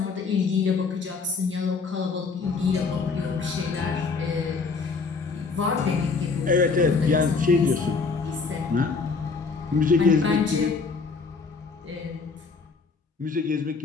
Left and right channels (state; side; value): quieter; right; 4.7 dB